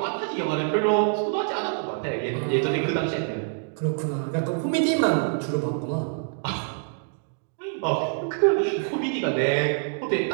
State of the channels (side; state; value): left; silent; digital silence